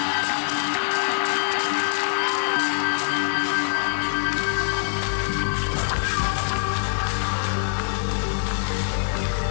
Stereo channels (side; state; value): right; silent; digital silence